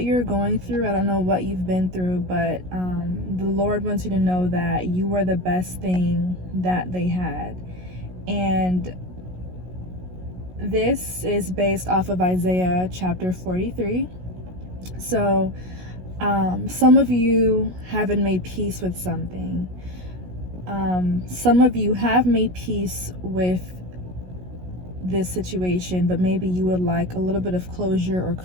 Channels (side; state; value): left; late; 16 ms